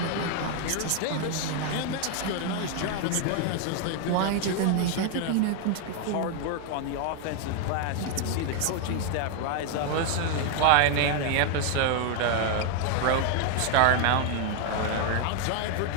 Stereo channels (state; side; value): different; both; correlation 0.00